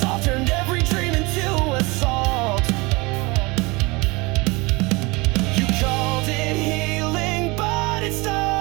turned every dream into assault. You called it healing, but it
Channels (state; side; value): quieter; left; 25.2 dB